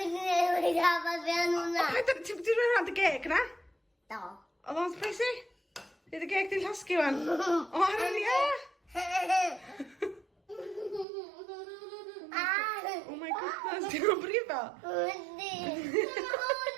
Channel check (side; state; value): left; drops out; at 11.1 s